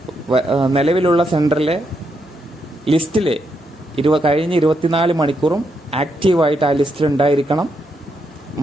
നിലവിലുള്ള സെൻറ്ററിലെ ലിസ്റ്റിൽ കഴിഞ്ഞ 24 മണിക്കൂറും ആക്റ്റീവായിട്ട് ആ ലിസ്റ്റിൽ ഉണ്ടായിരിക്കണം.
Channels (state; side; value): normal; both; correlation 0.80